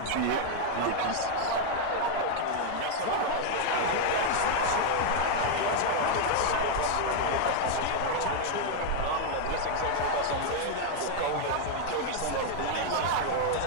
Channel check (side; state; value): both; different; correlation 0.00